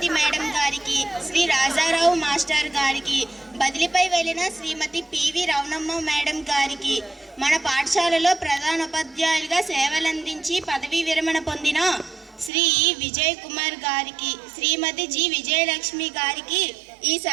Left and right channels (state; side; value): drops out; left; at 12.5 s